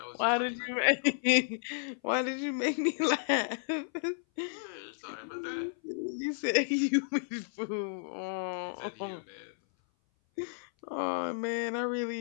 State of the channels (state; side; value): silent; right; 56 dB below the other